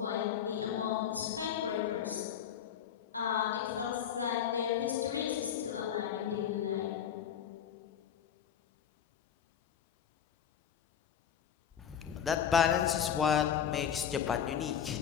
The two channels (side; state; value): right; quieter; 8.7 dB